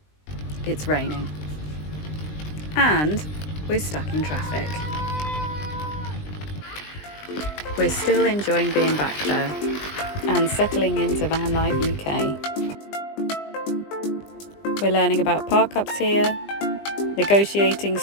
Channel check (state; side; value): late; right; 20 ms